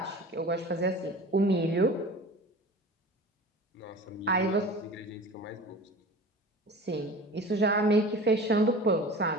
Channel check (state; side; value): normal; both; correlation 0.38